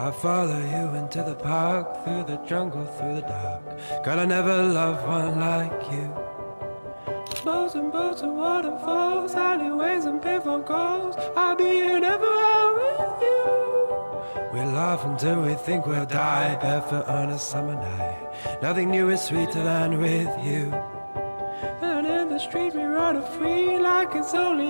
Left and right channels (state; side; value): inverted; both; correlation -1.00